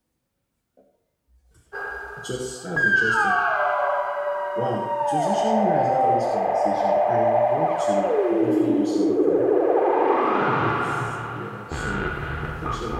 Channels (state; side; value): identical; both; correlation 1.00